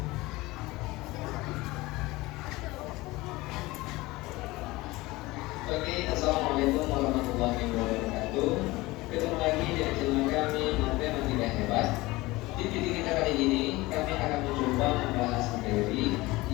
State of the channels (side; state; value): right; quieter; 20.5 dB